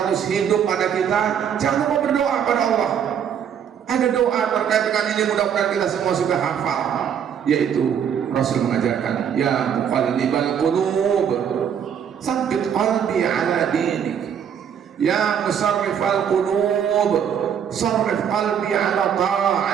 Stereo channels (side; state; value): left; quieter; 8.3 dB